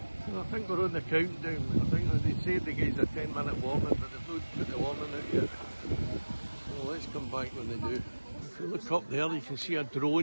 So I think we're on the countdown. I think they said they gave us a 10-minute warning, but they've not put the warning out yet. So let's come back when they do. If you look up there, you can see a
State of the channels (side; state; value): both; inverted; correlation -1.00